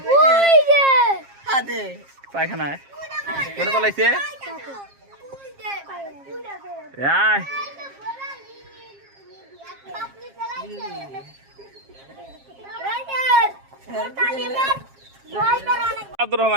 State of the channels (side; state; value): left; late; 7.4 ms